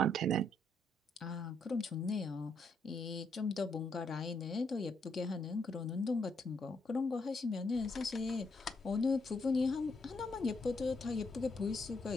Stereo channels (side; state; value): both; normal; correlation 0.75